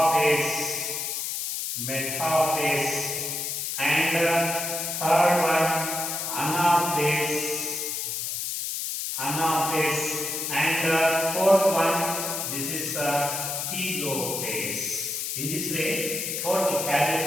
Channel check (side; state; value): left; noise; hiss, 3 dB below the sound